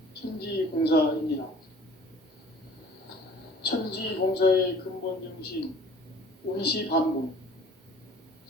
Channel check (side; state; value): both; normal; correlation 0.50